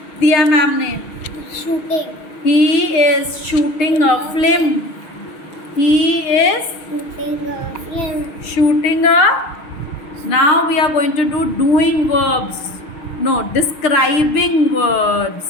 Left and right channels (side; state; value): right; late; 6.4 ms